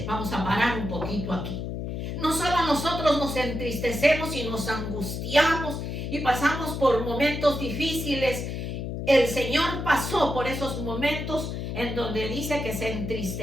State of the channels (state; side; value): noise; left; hum, 4 dB below the sound